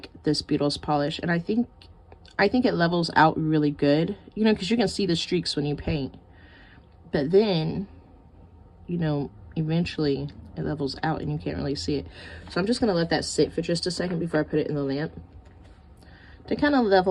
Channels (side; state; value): both; identical; correlation 1.00